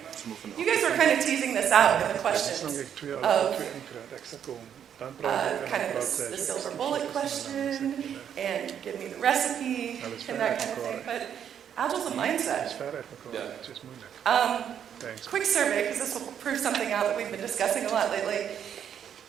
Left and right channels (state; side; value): quieter; left; 8.9 dB